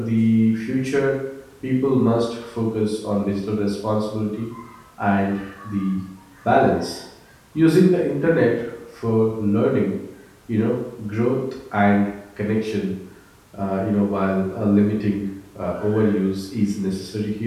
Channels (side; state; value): both; identical; correlation 1.00